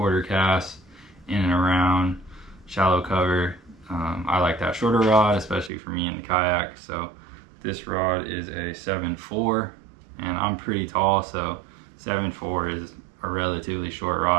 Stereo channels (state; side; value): drops out; left; at 5.7 s